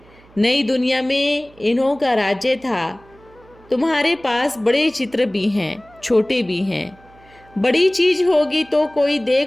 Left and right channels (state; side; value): noise; right; hum, 27 dB below the sound